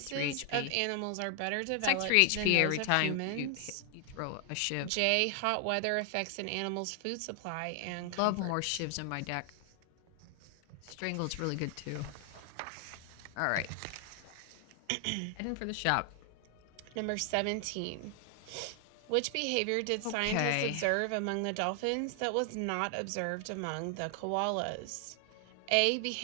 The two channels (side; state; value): both; different; correlation 0.00